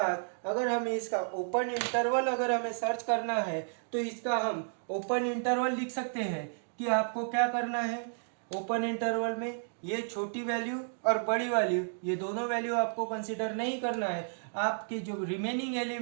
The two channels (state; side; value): silent; left; digital silence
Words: अगर हमें इसका ओपन इंटरवल अगर हमें सर्च करना है तो इसका हम ओपन इंटरवल लिख सकते हैं कि आपको क्या करना है। ओपन इंटरवल में ये छोटी वैल्यू और बड़ी वैल्यू ये दोनों वैल्यू आपको कंसीडर नहीं करना है। आपके जो रिमेनिंग